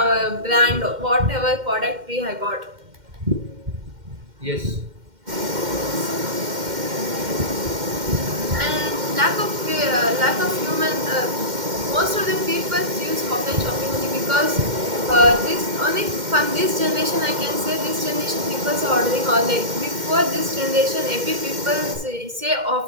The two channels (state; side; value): late; left; 2.1 ms